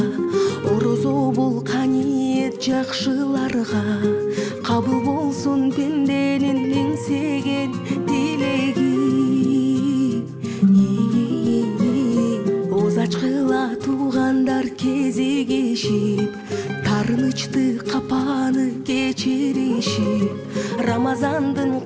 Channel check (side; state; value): both; identical; correlation 1.00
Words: орозо бул каниет жакшыларга, кабыл болсун пенденин эңсеген тилеги. Ачкыла туугандар кезигишип, тарынычты капаны кечиришип, Рамазандын